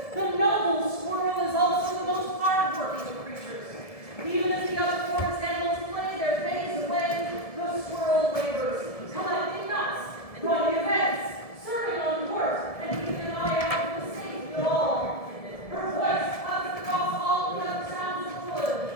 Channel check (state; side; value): late; right; 1.7 ms